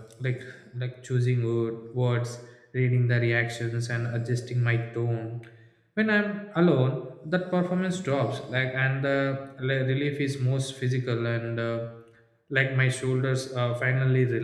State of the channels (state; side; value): identical; both; correlation 1.00